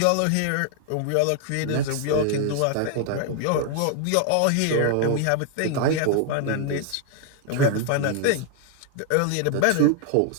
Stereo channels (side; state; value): both; different; correlation 0.00